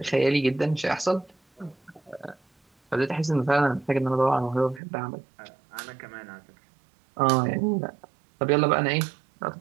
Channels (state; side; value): drops out; left; at 4.8 s